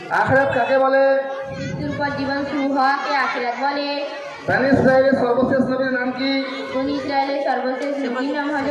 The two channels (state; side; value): identical; both; correlation 1.00